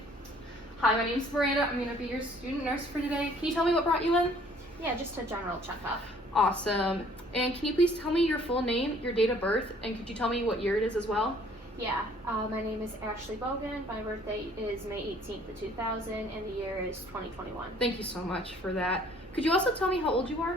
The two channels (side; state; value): both; normal; correlation 0.57